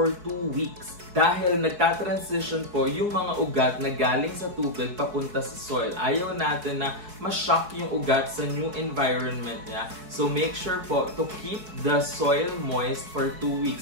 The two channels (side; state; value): left; late; 4.7 ms